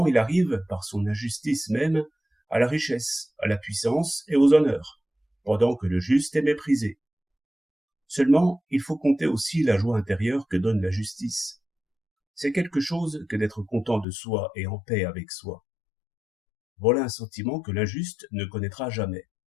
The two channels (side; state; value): right; drops out; at 14.1 s